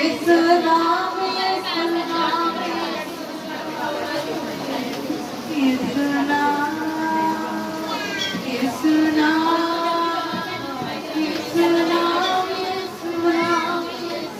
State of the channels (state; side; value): identical; both; correlation 1.00